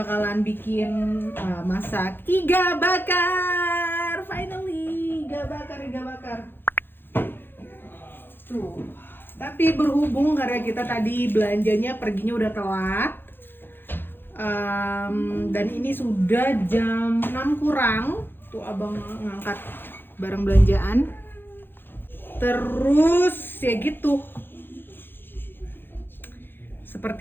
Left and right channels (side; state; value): right; late; 0.10 ms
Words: bikin masak iga bakar. Finally, iga bakar. Tuh. Tapi berhubung karena kita tadi belanjanya perginya udah telat, dan ini sudah jam 6 kurang, tuh abang ngangkat barang belanjaan. Terus ya gitu,